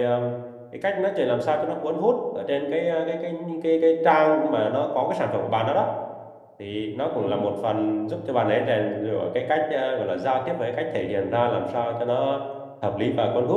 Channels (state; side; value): identical; both; correlation 1.00